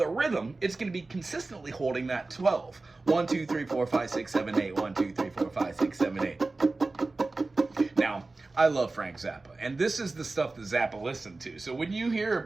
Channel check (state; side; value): quieter; left; 3.4 dB